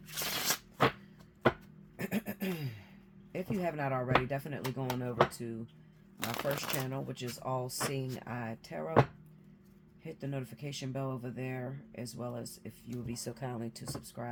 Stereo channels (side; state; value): both; identical; correlation 1.00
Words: If you have not already, definitely go on over to my first channel, which is Allseeingeyetarot. Hit the notification bell over there, as well as if you would be so kindly to